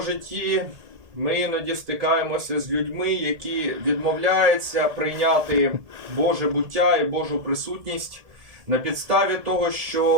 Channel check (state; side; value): late; left; 1.7 ms